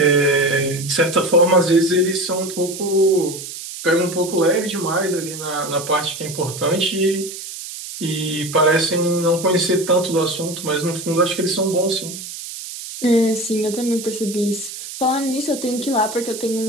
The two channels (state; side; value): noise; right; hiss, 10 dB below the sound